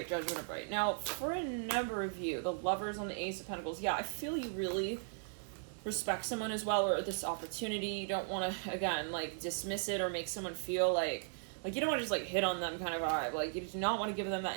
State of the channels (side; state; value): left; silent; digital silence